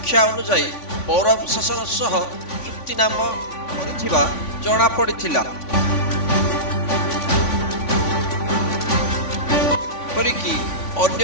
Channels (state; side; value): late; right; 3.5 ms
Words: ଅନୁଯାୟୀ ପୌର ପ୍ରଶାସନ ସହ ଚୁକ୍ତିନାମା କରିଥିବା ଜଣାପଡ଼ିଥିଲା। ଏପରିକି